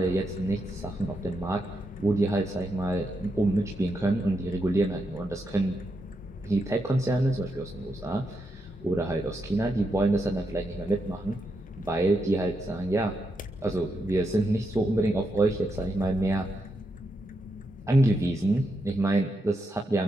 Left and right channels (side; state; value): both; normal; correlation 0.83